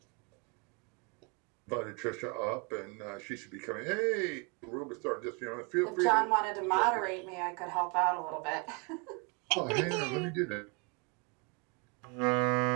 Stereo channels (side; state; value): left; quieter; 32.7 dB